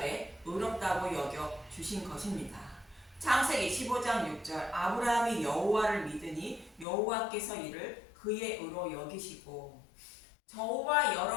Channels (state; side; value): drops out; right; at 6.9 s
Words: 의롭다고 여겨 주신 것입니다. 창세기 15장 6절 아브라함이 여호와를 믿으니 여호와께서 이를 그의 의로 여기시고 저와